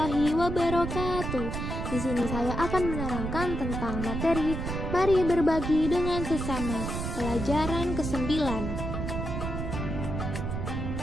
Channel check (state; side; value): noise; right; rumble, 4 dB below the sound